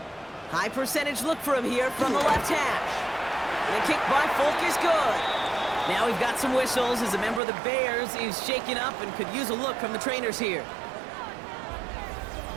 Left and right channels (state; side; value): drops out; left; at 7.4 s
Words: High percentage look for him here from the left hash. And the kick by Folk is good. Now we've got some whistles as a member of the Bears is shaken up and could use a look from the trainers here.